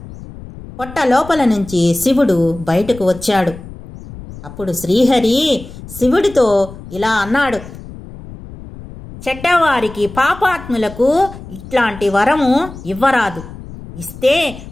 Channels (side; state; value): left; noise; rumble, 15 dB below the sound